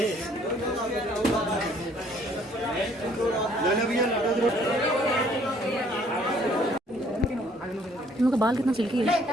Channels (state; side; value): normal; both; correlation 0.61